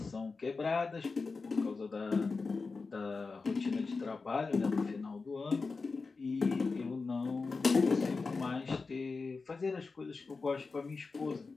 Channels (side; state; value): right; quieter; 4.3 dB